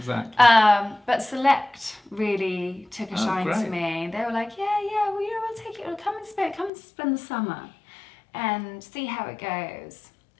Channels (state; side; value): drops out; right; at 6.7 s